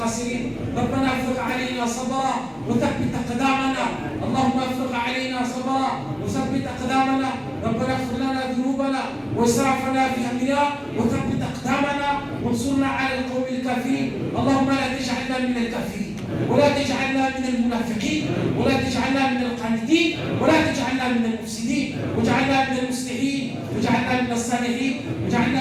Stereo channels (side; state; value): both; identical; correlation 1.00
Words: ربنا افرغ علينا صبرا وثبت أقدامنا. اللهم افرغ علينا صبرا وثبت أقدامنا. ربنا اغفر لنا ذنوبنا وإسرافنا في أمرنا وثبت أقدامنا وانصرنا على القوم الكافرين. اللهم لا تجعلنا من الكافرين ولا تجعلنا من المنافقين ولا تجعلنا من القانتين ولا تجعلنا من المفسدين، واجعلنا من المصلحين واجعلنا من الصالحين